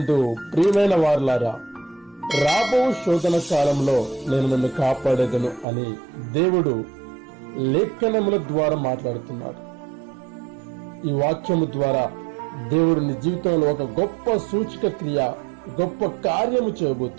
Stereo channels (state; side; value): drops out; left; at 5.7 s